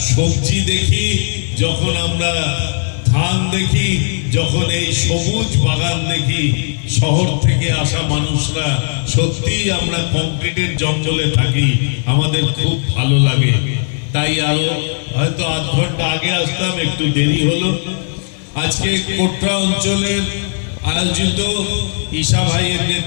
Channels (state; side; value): silent; right; 65 dB below the other